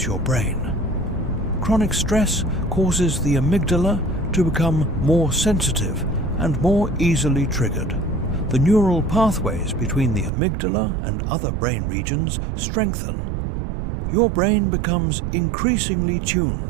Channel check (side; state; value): left; drops out; at 10.3 s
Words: your brain. Chronic stress causes the amygdala to become more sensitive and more easily triggered. The neural pathways between the amygdala and other brain regions strengthen. Your brain becomes increasingly